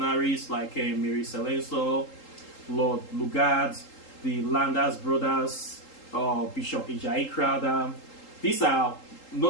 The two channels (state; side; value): late; right; 3.8 ms